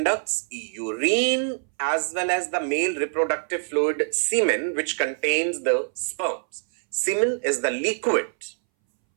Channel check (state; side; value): silent; left; 62 dB below the other